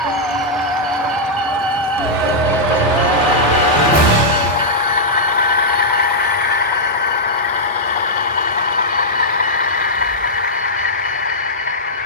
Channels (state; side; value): normal; both; correlation -0.08